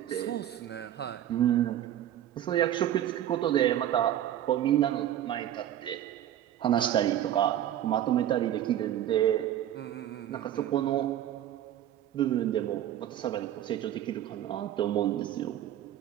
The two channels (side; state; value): left; quieter; 11.7 dB